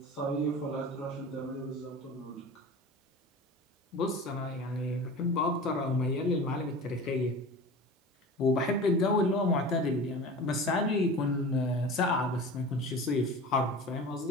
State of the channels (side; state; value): both; normal; correlation 0.35